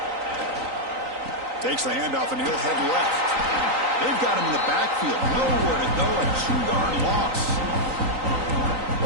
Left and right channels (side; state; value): left; late; 3.9 ms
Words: Takes the handoff and he'll head left. They've got him in the backfield. Nowhere to go. A 2-yard loss.